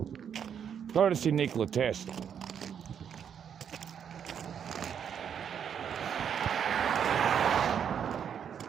Courtesy Nikola Tesla.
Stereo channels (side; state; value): left; quieter; 8.1 dB